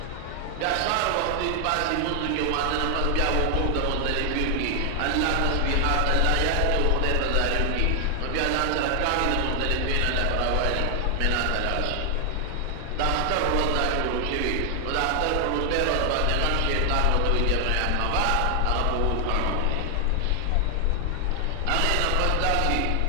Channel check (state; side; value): different; both; correlation 0.00